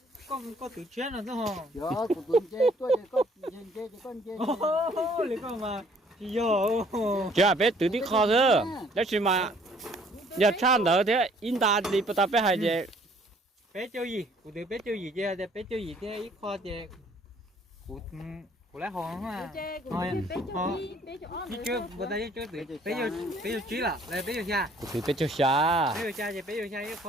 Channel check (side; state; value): both; normal; correlation 0.60